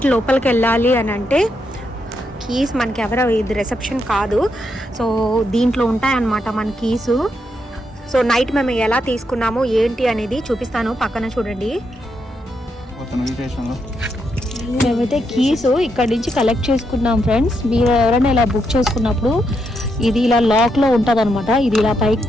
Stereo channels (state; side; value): normal; both; correlation 0.81